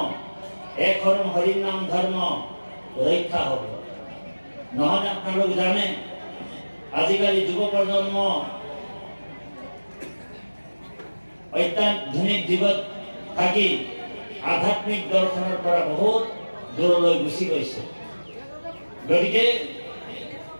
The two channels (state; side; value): inverted; both; correlation -1.00